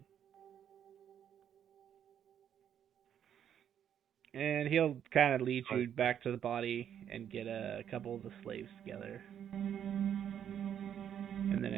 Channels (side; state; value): left; quieter; 9.3 dB